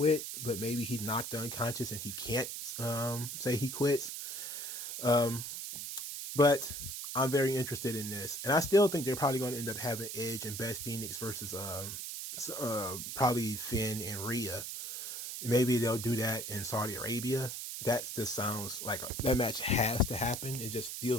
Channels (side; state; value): right; noise; hiss, 6 dB below the sound